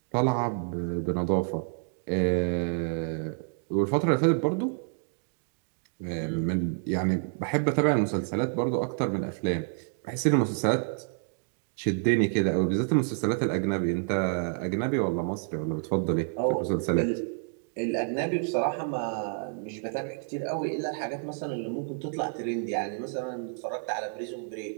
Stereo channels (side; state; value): left; silent; 59 dB below the other